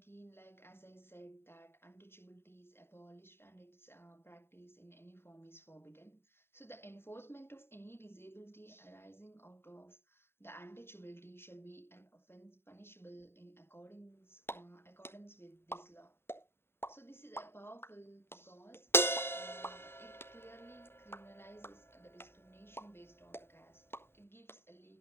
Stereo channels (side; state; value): right; late; 0.11 ms